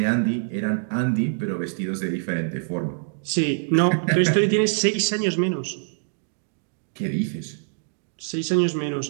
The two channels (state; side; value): silent; left; digital silence